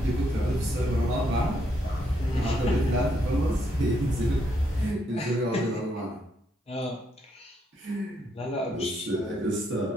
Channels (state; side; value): normal; both; correlation 0.76